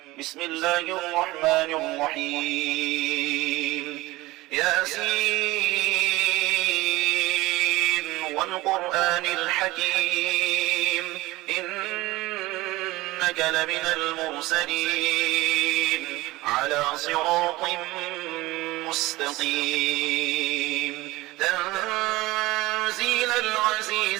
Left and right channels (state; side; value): quieter; left; 19.5 dB